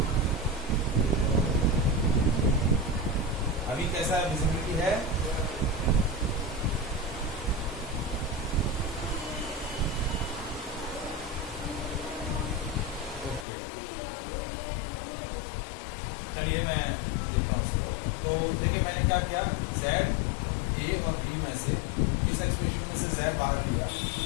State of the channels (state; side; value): drops out; right; at 13.5 s